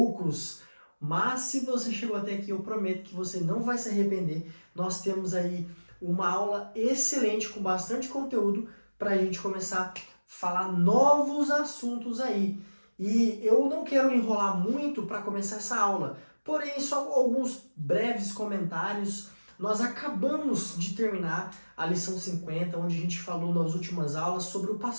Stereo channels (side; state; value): both; inverted; correlation -1.00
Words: Mas se você chegou até aqui, eu prometo que você não vai se arrepender. Nós temos aí uma aula excelente com bastante conteúdo para a gente começar a falar novos assuntos aí. E eu não quero enrolar muito para começar essa aula, porém só alguns breves comentários. Nós acabamos de terminar a lição 50, onde a gente falou nas últimas aulas sobre o